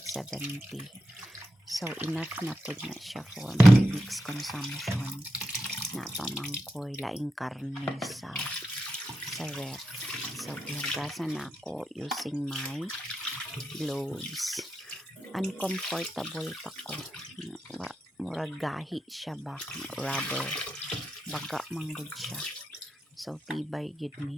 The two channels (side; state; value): both; normal; correlation 0.87